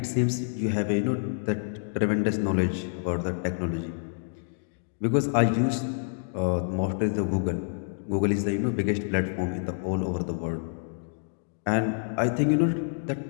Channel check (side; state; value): right; silent; digital silence